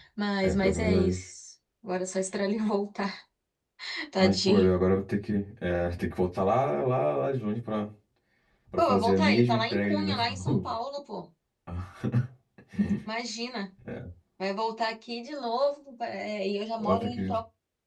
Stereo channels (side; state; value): both; identical; correlation 1.00